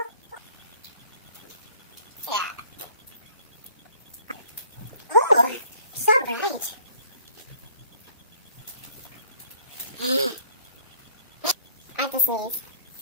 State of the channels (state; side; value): inverted; both; correlation -0.57